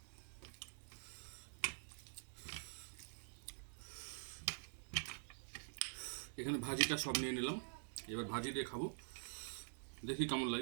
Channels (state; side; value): silent; left; digital silence